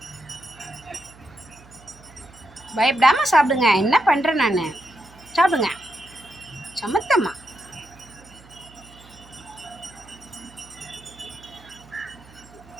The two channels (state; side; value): noise; right; hum, 23 dB below the sound